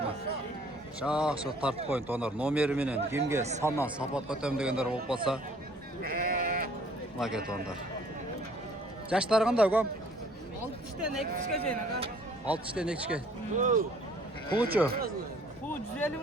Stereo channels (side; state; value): both; normal; correlation 0.57